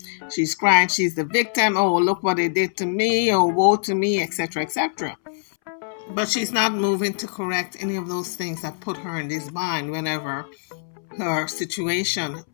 she's crying she's the victim. Oh, look what they did to me. Oh, woe to me, etc., etc. But she's not moving to correct any of those things that put her in this bind whenever her situation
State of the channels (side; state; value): right; silent; 63 dB below the other